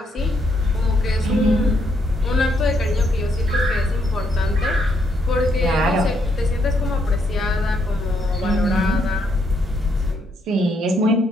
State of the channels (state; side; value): normal; both; correlation 0.75